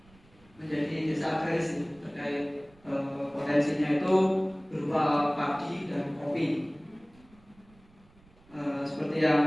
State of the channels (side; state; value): right; noise; rumble, 28 dB below the sound